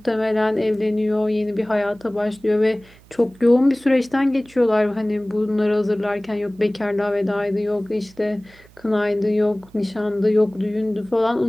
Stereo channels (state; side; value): noise; right; hum, 26 dB below the sound